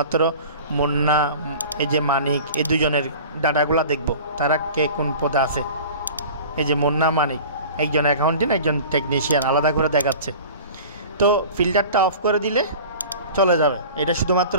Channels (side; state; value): both; inverted; correlation -0.40